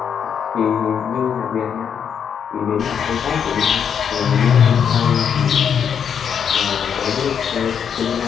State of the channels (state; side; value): quieter; right; 7.7 dB